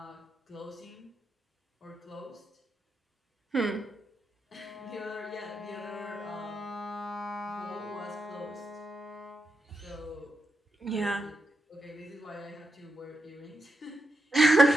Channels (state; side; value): normal; both; correlation 0.85